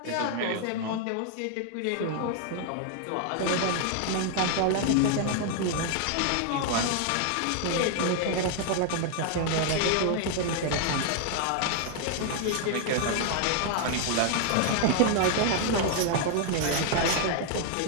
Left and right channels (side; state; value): both; different; correlation 0.00